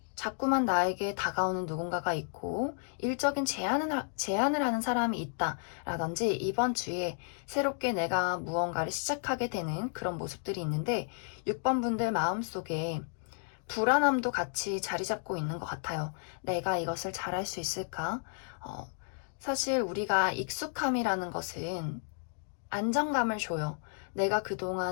자꾸만 나에게 다가오는 누군가가 있고 일적인 제안을 하는 사람이 있다라든지 이번 주에 새롭게 내가 무언가를 시작하게 되는 그런 모습들이 있는데 6번 분들 마음속에 불안함도 같이 자리 잡고 있는 것 같아요. 내가 이것을 잘할 수 있을까? 사실 우리가 익숙함이라는 것은 안정감을 줘요. 내가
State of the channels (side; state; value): right; silent; 56 dB below the other